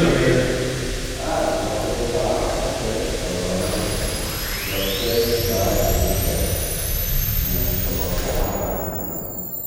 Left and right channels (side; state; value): both; identical; correlation 1.00